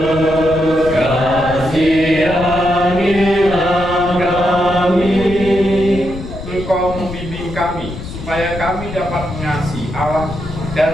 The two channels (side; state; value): left; noise; rumble, 10 dB below the sound